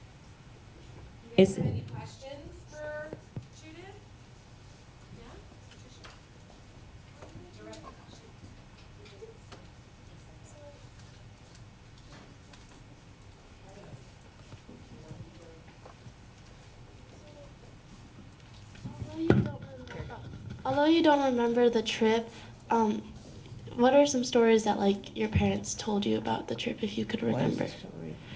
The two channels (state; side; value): identical; both; correlation 1.00